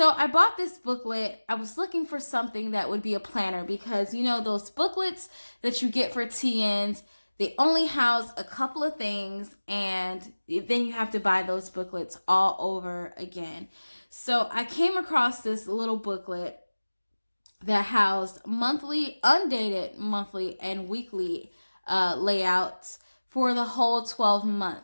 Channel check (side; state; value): both; inverted; correlation -1.00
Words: I bought this booklet. I was looking for something that would be a planner because, those booklets that you get for TNs, they only house a couple of things and then you have to buy those booklets all over again. So I came across this little booklet that housed undated monthly and weekly layouts for the whole 12